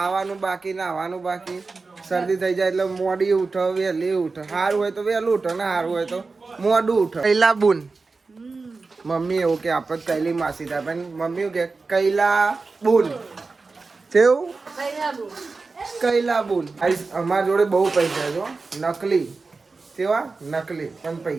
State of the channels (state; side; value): quieter; left; 4.1 dB